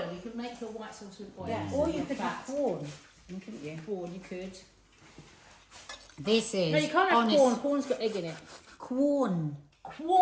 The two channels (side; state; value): both; identical; correlation 1.00